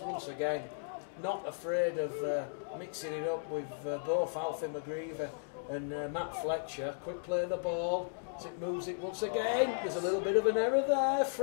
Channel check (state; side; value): silent; right; digital silence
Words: again not afraid of mixing it up with both Alfie McGreevy and Matt Fletcher. Quick play of the ball as it moves it once again. There's a little bit of an error there